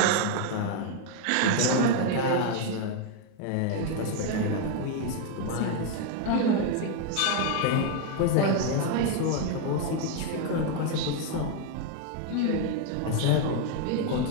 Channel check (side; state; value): both; different; correlation 0.01